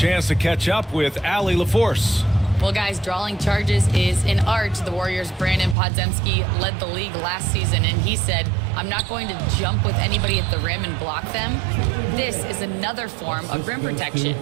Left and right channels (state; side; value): drops out; left; at 5.8 s